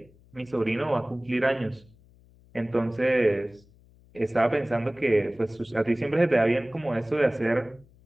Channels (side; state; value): left; noise; hum, 28 dB below the sound